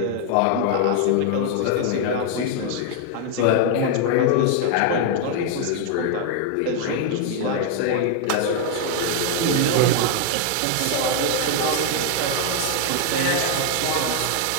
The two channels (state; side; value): different; both; correlation 0.00